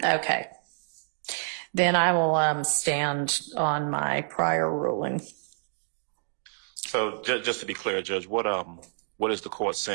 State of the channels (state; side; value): silent; left; digital silence